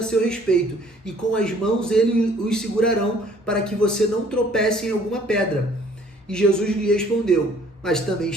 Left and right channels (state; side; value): normal; both; correlation 0.58